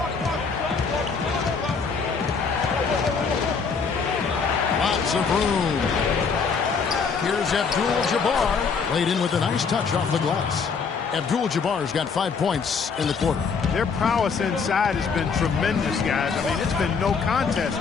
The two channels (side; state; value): right; quieter; 5.4 dB